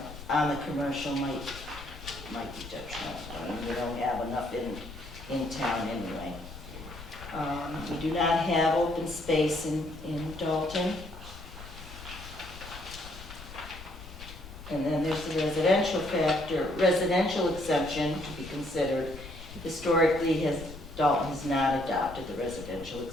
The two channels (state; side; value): noise; left; rumble, 14 dB below the sound